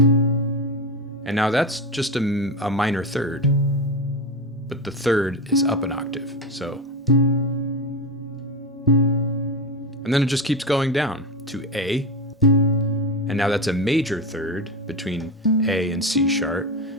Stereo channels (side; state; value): both; normal; correlation 0.17